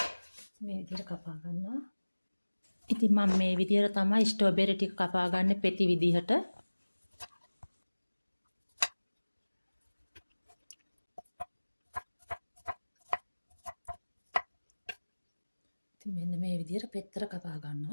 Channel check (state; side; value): inverted; both; correlation -1.00